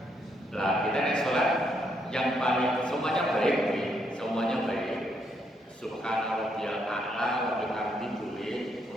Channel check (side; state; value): both; normal; correlation 0.75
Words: Lah kita nek salat yang paling semuanya baik, semuanya baik. Subhana rabbiyal a'la wa bihamdihi boleh